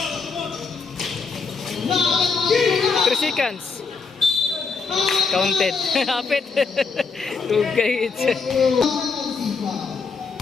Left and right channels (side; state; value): right; quieter; 4.8 dB